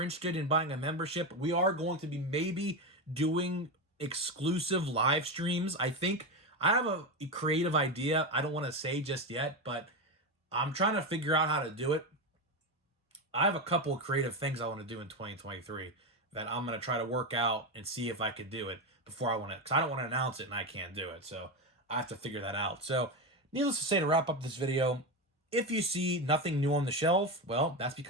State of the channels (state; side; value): normal; both; correlation 0.14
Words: interested in buying a membership, we are going to be maybe doing exclusive live streams. I think I have a creative idea. I don't want to say just yet, but I'm trying to figure out how to do it. I have a couple of creative things I want to do in 2023 that I'm going to try to work out and see if I could do it before I want to, because I don't want to announce it and I can't do it. So I have to figure that out. So needless to say, to wrap up this video, if you see nothing new on the shelf, well, that's